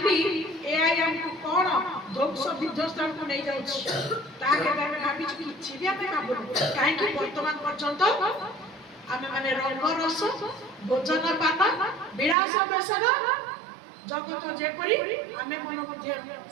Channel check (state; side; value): drops out; left; at 12.4 s